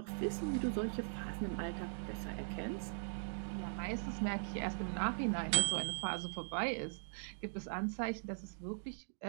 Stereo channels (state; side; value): silent; left; digital silence